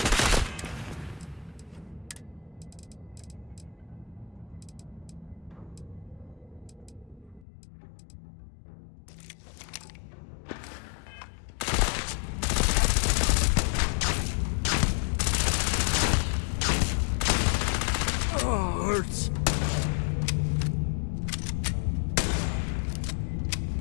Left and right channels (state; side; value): drops out; right; at 7.5 s